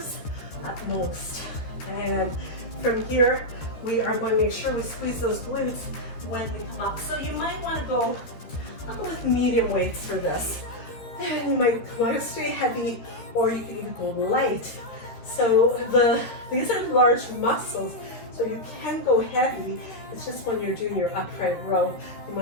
at most. And from here, we are going to make sure we squeeze those glutes when we come up. So you might want to go, I'll go with medium weights for this. And you might want to stay heavy, or you can even go light. So these are large muscles, so you can go heavy. It's just when you're doing your upright row, you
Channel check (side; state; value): right; late; 13 ms